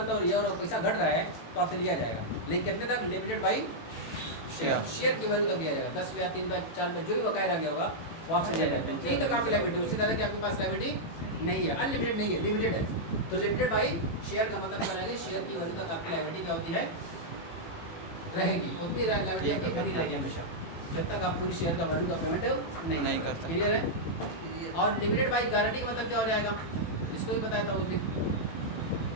हो रही है और पैसा घट रहा है तो आपसे लिया जाएगा, लेकिन कितने तक लिमिटेड बाई शेयर, शेयर की वैल्यू तक दिया जाएगा। 10 रुपया 3 रुपया 4 रुपये जो भी बकाया रह गया होगा वो आपसे दिया जाएगा। यही तक आपकी लायबिलिटी। उसी तरह की आपके पास लायबिलिटी नहीं है, अनलिमिटेड नहीं है, लिमिटेड है। तो लिमिटेड बाई शेयर का मतलब क्या रहेगा, शेयर की वैल्यू तक आपकी लायबिलिटी क्या होती है रहेगी, उतनी लायबिलिटी आपकी बनी रहेगी हमेशा, जब तक आप पूरी शेयर का वैल्यू का पेमेंट नहीं करते। क्लियर है। और लिमिटेड बाई गारंटी का मतलब क्या हो जाएगा, इसको भी बताया था उस दिन।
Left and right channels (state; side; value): late; right; 18 ms